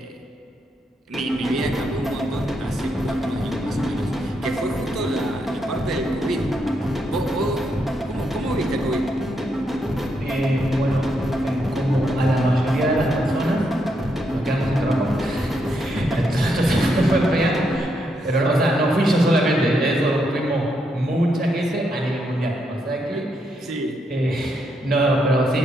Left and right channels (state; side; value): normal; both; correlation 0.79